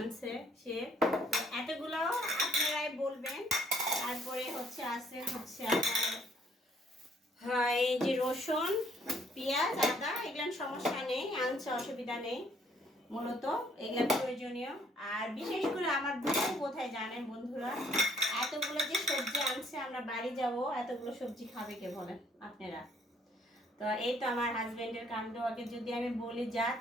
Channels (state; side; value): normal; both; correlation 0.64